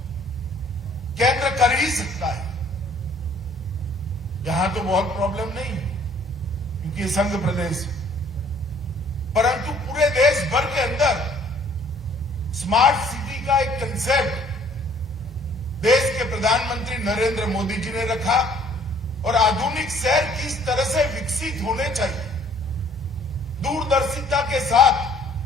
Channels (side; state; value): both; normal; correlation 0.58